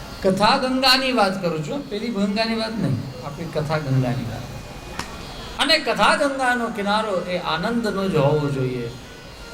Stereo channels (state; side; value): identical; both; correlation 1.00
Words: કથા ગંગાની વાત કરું છું, પેલી ગંગાની વાત નહીં, આપણી કથા ગંગાની વાત. અને કથા ગંગાનો કિનારો એ આનંદનો જ હોવો જોઈએ.